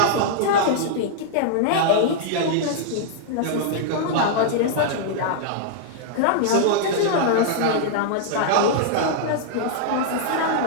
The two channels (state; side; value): different; both; correlation -0.01